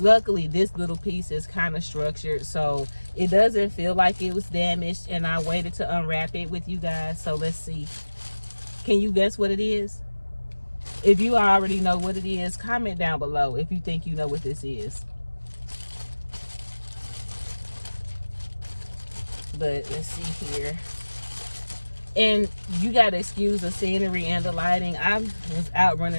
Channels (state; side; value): inverted; both; correlation -1.00